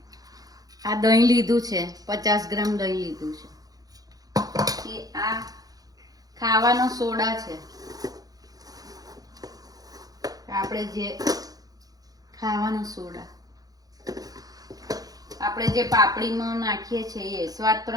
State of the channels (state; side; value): late; left; 0.18 ms